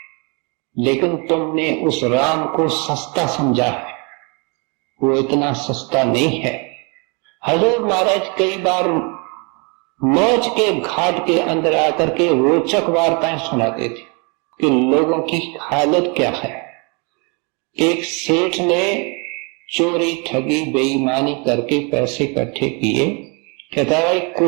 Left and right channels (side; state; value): left; quieter; 32.6 dB